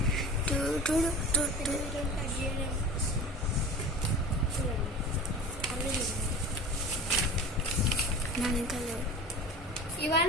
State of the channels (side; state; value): both; normal; correlation 0.35